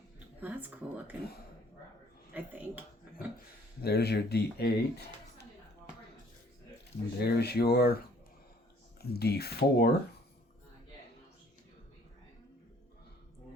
That's cool looking, I think. There's your D8. There's your D4.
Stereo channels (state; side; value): normal; both; correlation 0.58